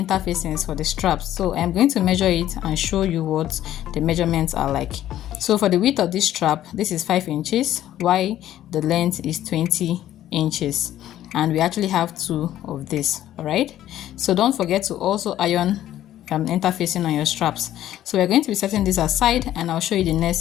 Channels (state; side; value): quieter; right; 12.6 dB